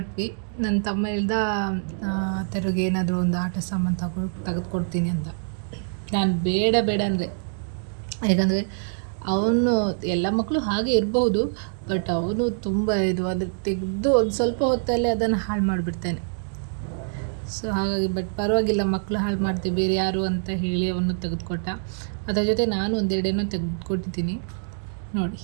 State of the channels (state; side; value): silent; left; digital silence